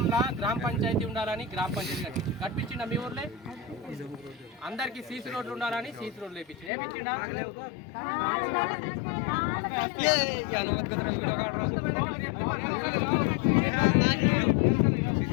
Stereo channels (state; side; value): drops out; right; at 6.7 s